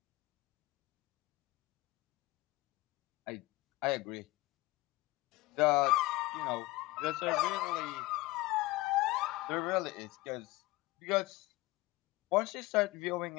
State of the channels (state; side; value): quieter; right; 20.1 dB